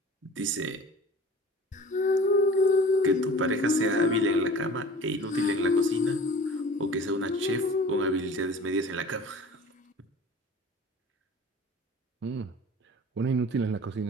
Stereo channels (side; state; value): both; normal; correlation 0.42